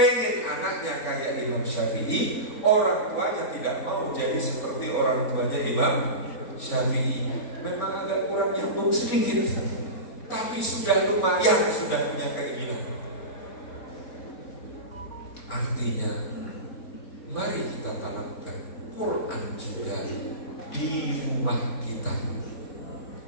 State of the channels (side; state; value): right; late; 4.3 ms